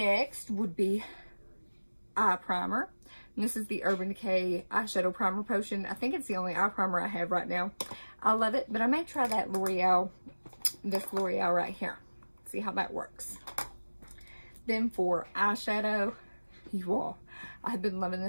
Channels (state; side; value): inverted; both; correlation -1.00